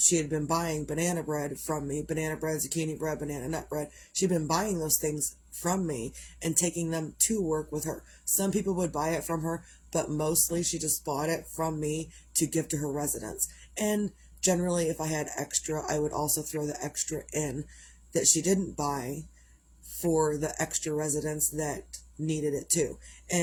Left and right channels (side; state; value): both; identical; correlation 1.00